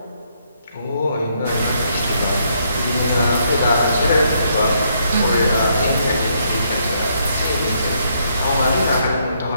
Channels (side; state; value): both; inverted; correlation -0.73